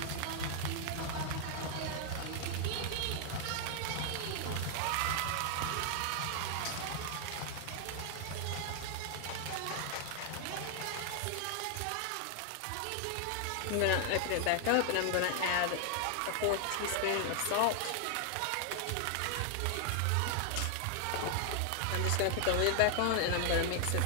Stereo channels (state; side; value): different; both; correlation 0.00